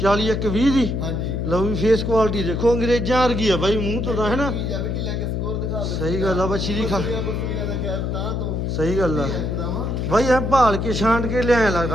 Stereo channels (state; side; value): noise; left; hum, 1 dB below the sound